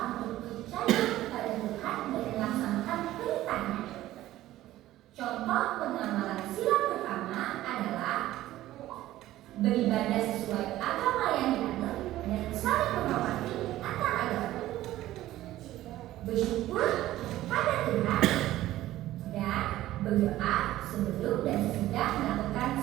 untuk percaya kepada Tuhan dan melaksanakan perintahnya. Contoh pengamalan sila pertama adalah beribadah sesuai agama yang dianut dan saling menghormati antar agama, bersyukur pada Tuhan, dan berdoa sebelum dan sesudah melakukan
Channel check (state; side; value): quieter; left; 14.9 dB